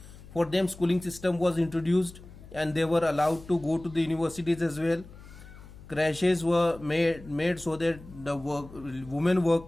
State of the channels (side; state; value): left; noise; hum, 18 dB below the sound